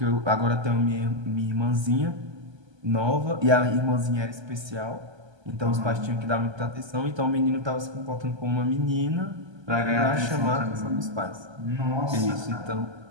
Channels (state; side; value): late; left; 1.3 ms